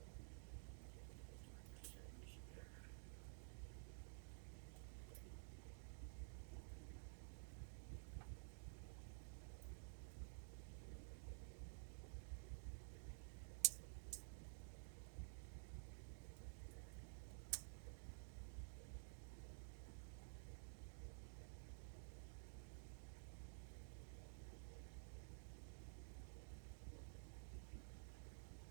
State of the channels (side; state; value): left; silent; digital silence